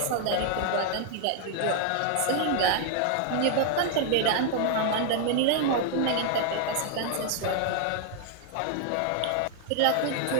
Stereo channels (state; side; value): different; both; correlation 0.00